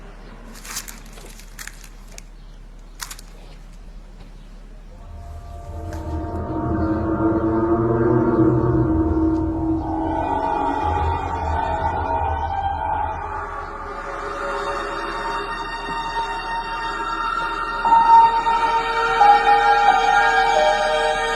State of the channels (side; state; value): both; identical; correlation 1.00